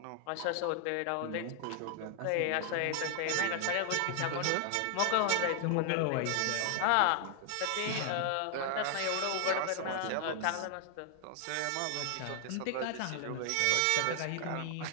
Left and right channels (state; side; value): different; both; correlation 0.00